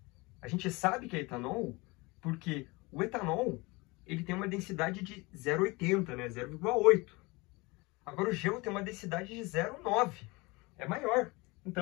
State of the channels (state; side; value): quieter; right; 24.8 dB